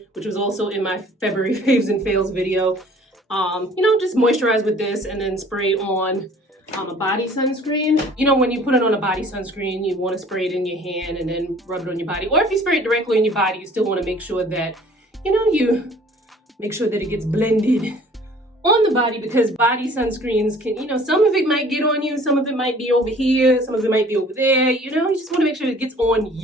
which was also in my February faves and fails video. You know, just moisturize with this and then spray on a body sunscreen. You know, when you put it on a body sunscreen, you want to spray it in your hand and then rub it on your body. Or if you spray it directly on your body, you still want to make sure that, you know, you make sure that it gets blended on the body, because body sunscreens can, you know, some of it might get on you, some of it might be over here, some of it might be over there. You know, you just want to make sure it gets on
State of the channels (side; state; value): both; normal; correlation 0.52